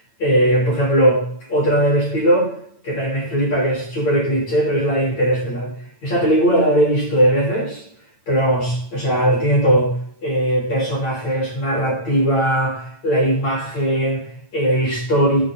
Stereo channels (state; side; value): late; right; 8.9 ms